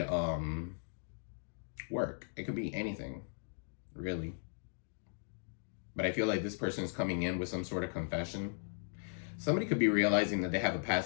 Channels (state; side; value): silent; right; digital silence